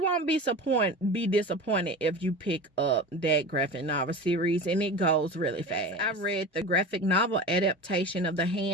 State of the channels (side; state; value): both; normal; correlation 0.31